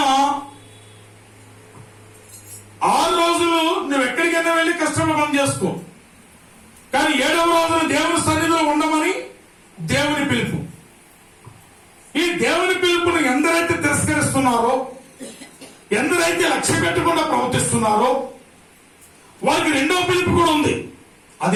6 రోజులు నువ్వు ఎక్కడికైనా వెళ్ళి కష్టంలో పని చేసుకో, కానీ 7వ రోజున దేవుని సన్నిధిలో ఉండమని దేవుని పిలుపు. ఈ దేవుని పిలుపుని ఎందరైతే తిరస్కరిస్తున్నారో, ఎందరైతే లక్ష్య పెట్టకుండా ప్రవర్తిస్తున్నారో వారికి 2వ పిలుపు కూడా ఉంది.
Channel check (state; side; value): identical; both; correlation 1.00